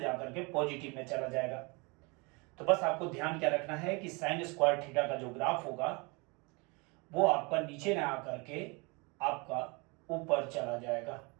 के पॉजिटिव में चला जाएगा। तो बस आपको ध्यान क्या रखना है कि साइन स्क्वायर थीटा का जो ग्राफ होगा वो आपका नीचे ना आकर के आपका ऊपर चला जाएगा।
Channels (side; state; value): left; quieter; 28.7 dB